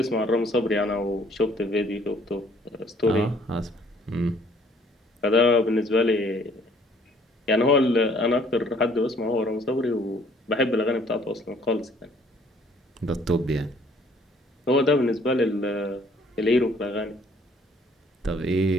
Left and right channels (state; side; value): normal; both; correlation 0.60